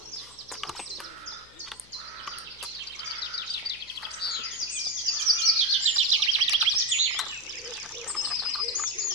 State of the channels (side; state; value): left; noise; hum, 27 dB below the sound